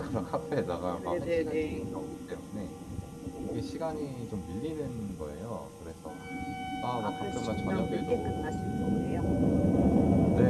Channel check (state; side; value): identical; both; correlation 1.00